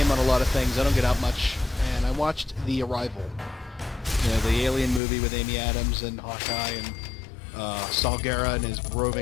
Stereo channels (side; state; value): right; drops out; at 5.0 s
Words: on a lot of things. I don't get out much, and I watched The Arrival. You know, the alien movie with Amy Adams and Hawkeye and Saul Guerra and his